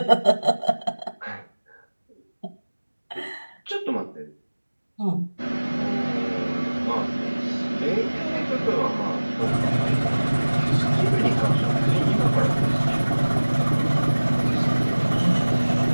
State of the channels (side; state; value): both; inverted; correlation -1.00